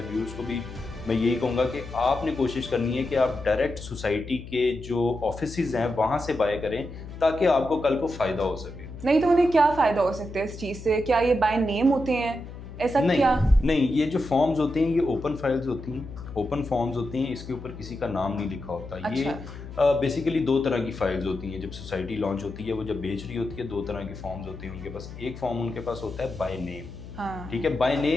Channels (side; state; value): left; noise; hum, 12 dB below the sound